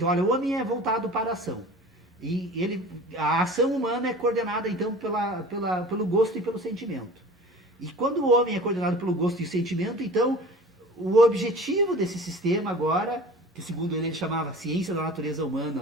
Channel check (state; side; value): normal; both; correlation 0.41